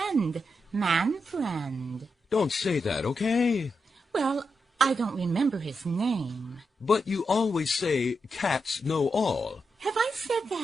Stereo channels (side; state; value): both; normal; correlation 0.85